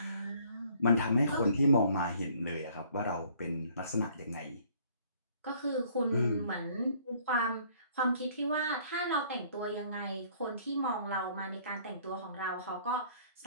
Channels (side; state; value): both; inverted; correlation -0.59